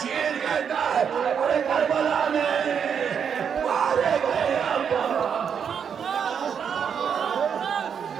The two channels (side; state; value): left; quieter; 7.3 dB